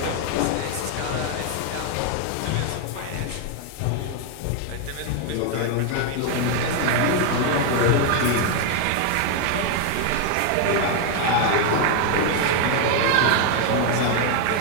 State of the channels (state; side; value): different; both; correlation 0.01